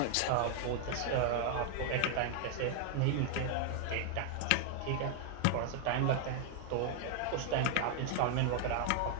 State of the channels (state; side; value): different; both; correlation 0.00